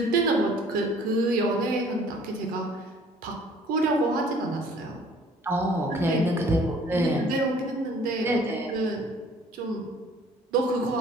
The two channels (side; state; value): both; normal; correlation 0.54